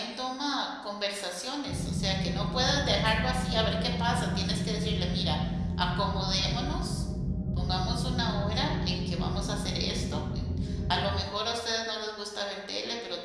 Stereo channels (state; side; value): identical; both; correlation 1.00